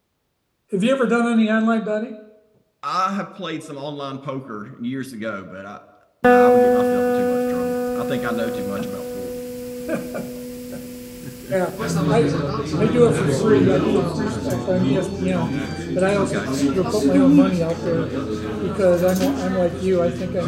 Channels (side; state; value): both; identical; correlation 1.00